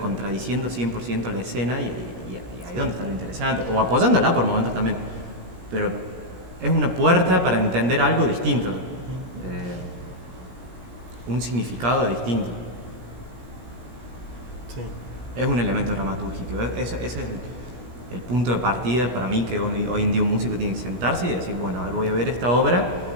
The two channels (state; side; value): late; left; 16 ms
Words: 100% la escena y ahí es donde está lo interesante, o apoyándola por momentos también. Pero es una puerta para entender algo distinto, un significado distinto. Sí. Es un elemento dramatúrgico. Ese es el punto de partida para mí, que hoy en día un músico tiene que sentarse y decir, bueno, a ver, voy a ver esta obra,